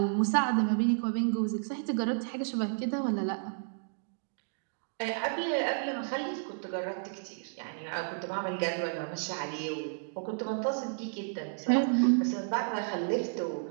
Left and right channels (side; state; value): left; silent; digital silence